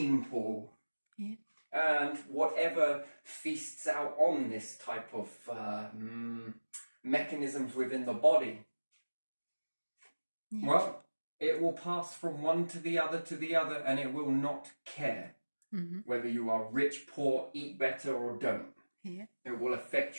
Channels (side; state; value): both; inverted; correlation -1.00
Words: pool. Yeah. And whatever feasts out on this type of mechanisms within the body, well, it will pass from one to the other, and it will not care whether you are rich, poor, eat better or don't. Yeah. It will affect